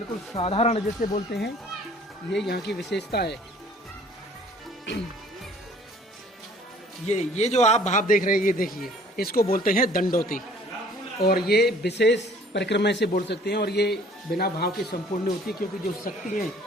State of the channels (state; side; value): normal; both; correlation 0.54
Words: साधारण जैसे बोलते हैं। ये यहाँ की विशेषता है। ये जो आप भाव देख रहे हैं, ये देखिए, इसको बोलते हैं दंडोती। और ये विशेष परिक्रमा से बोल सकते हैं। और ये बिना भाव के संपूर्ण नहीं होती, क्योंकि जो शक्ति है